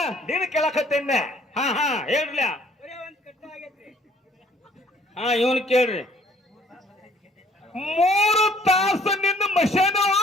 ನೀನು ಕೇಳಕತ್ತೇನೆ. ಹೇಳ್ರಿ. ಇವನ್ ಕೇಳ್ರಿ. 3 ತಾಸು ನಿನ್ನ ಮಷೇನು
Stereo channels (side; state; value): both; normal; correlation 0.60